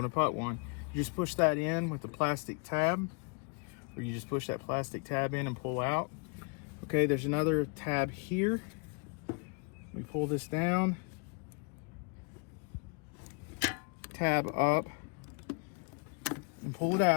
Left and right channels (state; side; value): quieter; right; 33.9 dB